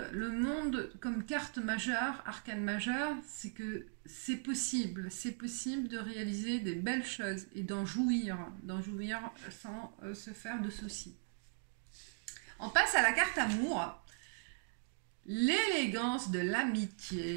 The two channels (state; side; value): silent; left; digital silence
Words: Le monde comme carte majeure, arcane majeure, c'est que c'est possible. C'est possible de réaliser des belles choses et d'en jouir sans se faire de soucis. On passe à la carte amour. L'élégance de